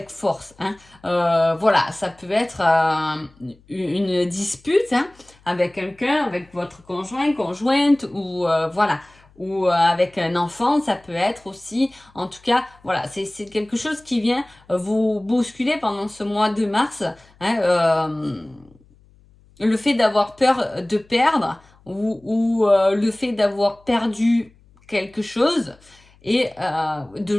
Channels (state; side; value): noise; left; hum, 29 dB below the sound